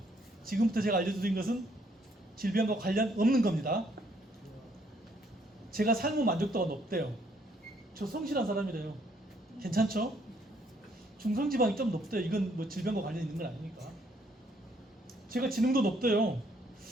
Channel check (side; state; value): both; normal; correlation 0.68